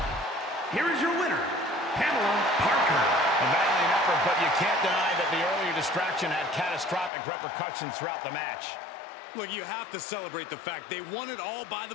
Here is your winner, Pamela Parker. A valiant effort, but you can't deny that the earlier distraction had catastrophic repercussions throughout the match. Look, you have to celebrate the fact they won it all by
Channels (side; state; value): right; drops out; at 7.1 s